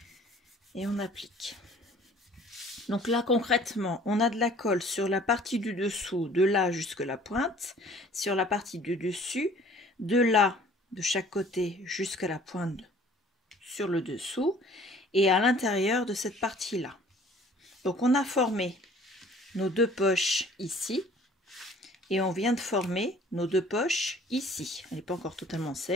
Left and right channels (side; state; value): both; normal; correlation 0.53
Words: Et on applique. Donc là, concrètement, on a de la colle sur la partie du dessous, de là jusqu'à la pointe, sur la partie du dessus, de là, de chaque côté, jusqu'à la pointe sur le dessous, et à l'intérieur de cette partie-là. Donc on a formé nos deux poches ici, et on vient de former nos deux poches ici. Elle n'est pas encore totalement